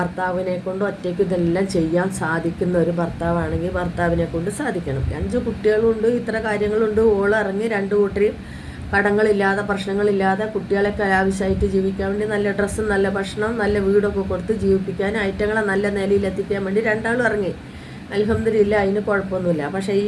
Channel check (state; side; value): identical; both; correlation 1.00